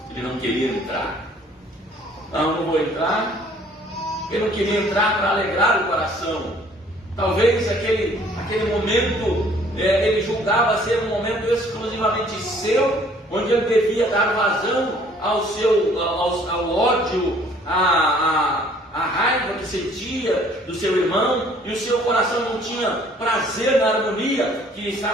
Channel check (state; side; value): normal; both; correlation 0.57